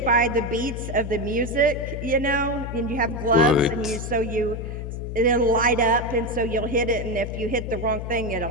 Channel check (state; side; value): noise; left; hum, 6 dB below the sound